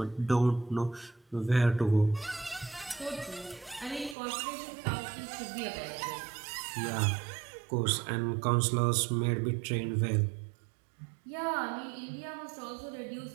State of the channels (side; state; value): left; drops out; at 4.2 s